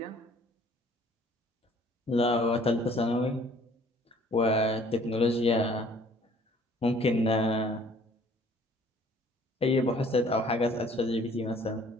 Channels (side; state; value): both; normal; correlation 0.56